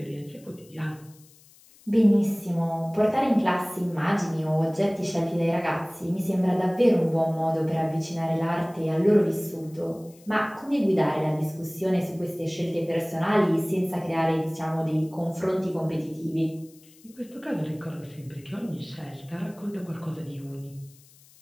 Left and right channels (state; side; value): noise; left; hiss, 26 dB below the sound